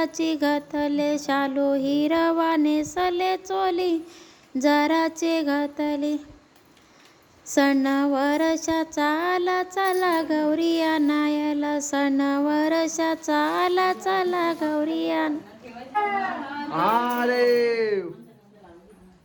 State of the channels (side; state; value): both; identical; correlation 1.00